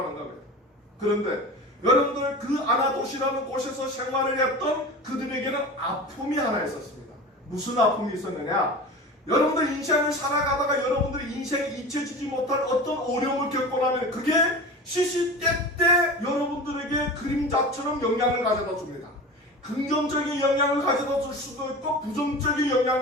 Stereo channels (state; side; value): normal; both; correlation 0.32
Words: 겁니다. 그런데 여러분들 그 아나돗이라는 곳에서 생활을 했던 그들에게는 아픔이 하나 있었습니다. 무슨 아픔이 있었느냐? 여러분들 인생을 살아가다가 여러분들이 인생에 잊혀지지 못할 어떤 어려움을 겪고 나면 그게 시시때때 여러분들에게 그림자처럼 영향을 가져다 줍니다. 긍정적인 영향을 가져다 줄 수도 있고 부정적인